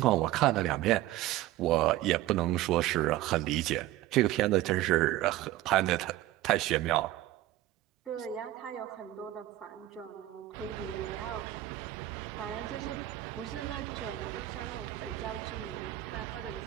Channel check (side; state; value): left; quieter; 15.2 dB